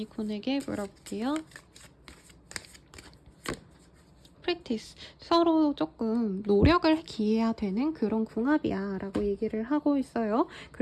물어볼게요. 프랙티스, 서로 조금 노력을 기해야 되는 그런 궁합이야 라고 얘기를 하고 있어요.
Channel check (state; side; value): identical; both; correlation 1.00